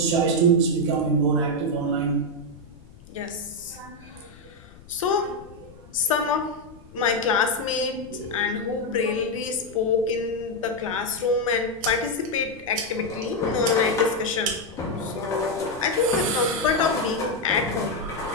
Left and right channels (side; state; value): left; noise; rumble, 22 dB below the sound